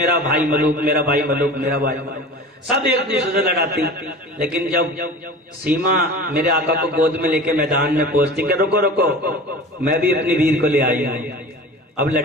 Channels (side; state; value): both; normal; correlation 0.37